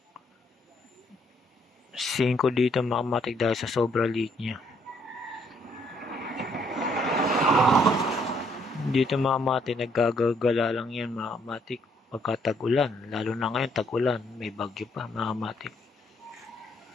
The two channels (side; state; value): both; normal; correlation 0.69